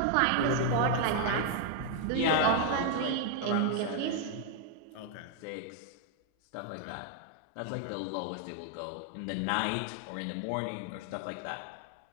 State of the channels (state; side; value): different; both; correlation 0.00